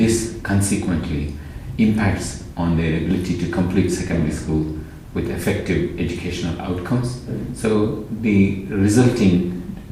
consequently impacts on their ability to complete secondary school with effective educational outcomes. So the resulting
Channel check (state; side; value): identical; both; correlation 1.00